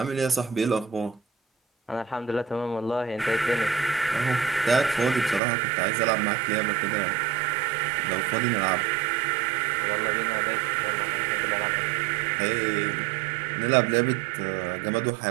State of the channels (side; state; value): left; drops out; at 5.4 s